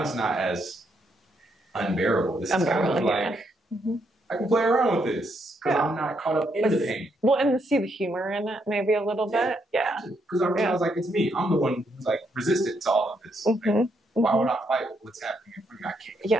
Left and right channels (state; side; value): normal; both; correlation 0.76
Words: it's not as unbearable. This is kind of like, I can play around with this because I'm not caught up in the pain. Well, and see the humor in it maybe a little bit. Yeah. Because I realize like it's me. I'm the one who's like resistant to all of this. Like, why would I fight what's happening in front of me? I